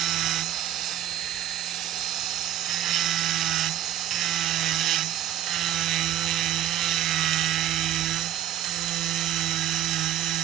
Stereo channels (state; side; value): quieter; left; 11.8 dB